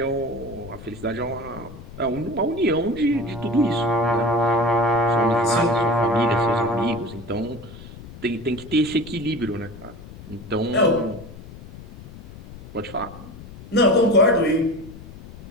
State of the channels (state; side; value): noise; left; rumble, 16 dB below the sound